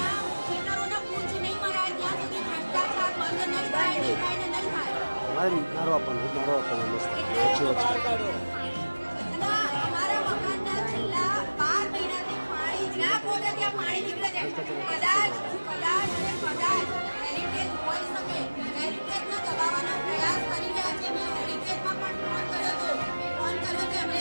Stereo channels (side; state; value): both; inverted; correlation -1.00